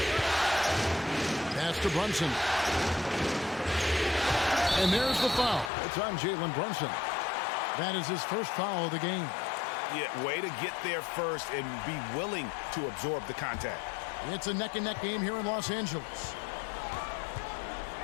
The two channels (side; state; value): right; drops out; at 5.7 s